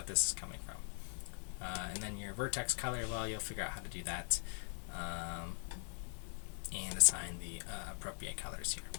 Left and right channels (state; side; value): silent; right; 50 dB below the other